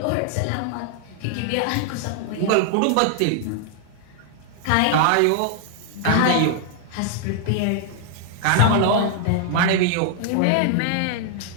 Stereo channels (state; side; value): different; both; correlation 0.00